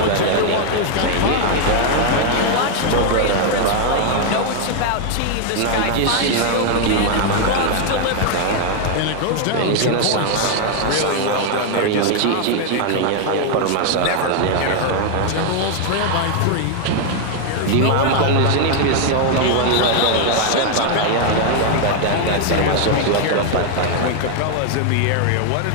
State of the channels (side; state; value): both; different; correlation 0.00